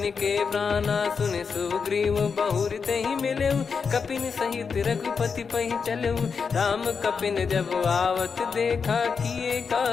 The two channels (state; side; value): quieter; right; 5.7 dB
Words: के प्राणा। सुन सुग्रीव बहुर तेहि मिलेउ, कपिन सहित रघुपति पहि चलऊ। राम कपिन जब आवत देखा, किए